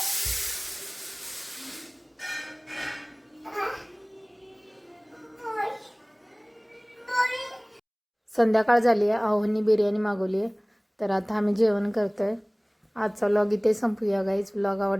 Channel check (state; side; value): identical; both; correlation 1.00